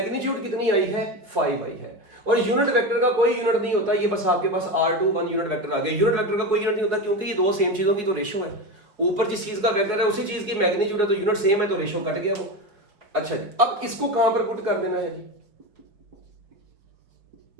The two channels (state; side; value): late; left; 4.7 ms